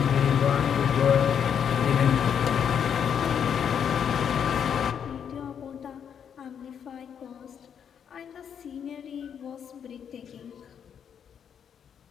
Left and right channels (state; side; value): quieter; right; 8.0 dB